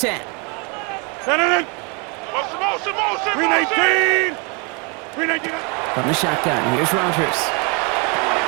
Green 18. Green 18. From the shotgun, here's Rogers.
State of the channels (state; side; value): quieter; left; 32.8 dB